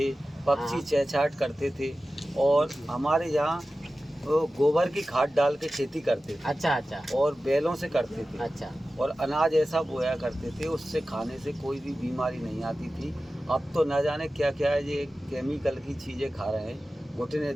पक्षी हाँ। चहचहाट करते थे, और हमारे यहाँ वो गोबर की खाद डाल के खेती करते थे। अच्छा अच्छा और बैलों से करते थे। अच्छा। और अनाज ऐसा बोया करते थे, उससे खाने से कोई भी बीमारी नहीं आती थी। अब तो न जाने क्या क्या है, ये केमिकल की चीज़ें खा रहे हैं, घुटने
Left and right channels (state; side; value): normal; both; correlation 0.95